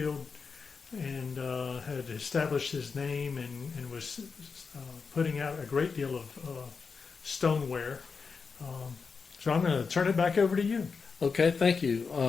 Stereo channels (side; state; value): right; quieter; 5.1 dB